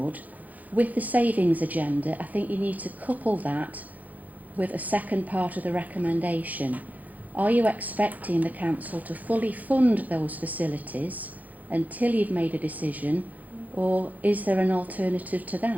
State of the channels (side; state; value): left; late; 0.079 ms